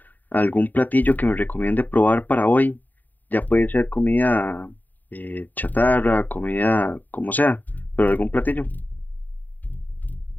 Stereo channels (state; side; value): late; right; 0.086 ms